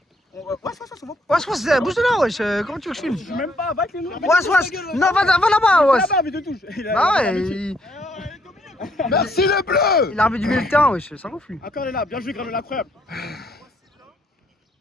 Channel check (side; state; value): both; normal; correlation 0.70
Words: Ouais, c'est bon. Ouais, bouge de là, wesh. Comment tu veux que je filme? Je suis même pas, va avec les noms. Ouais. Non, va là-bas, ouais. Là-bas, mais de touche. Bah ouais, merci les bleus. il a armé du milieu de terrain, wesh. Ça gonfle lui. Encore, elle est là, bien joué Granola, incroyable.